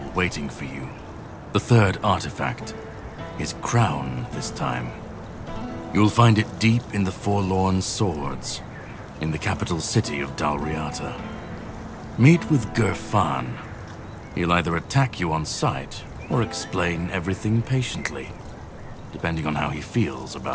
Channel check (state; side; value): identical; both; correlation 1.00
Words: waiting for you. The third artifact. His crown, this time. You'll find it deep in the Forlorn Swords, in the capital city of Dalriata. Meet with Gerfan. He'll either attack you on sight, or explain everything patiently, depending on how he feels